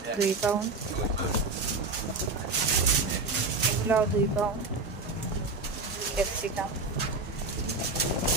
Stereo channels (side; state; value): left; quieter; 3.5 dB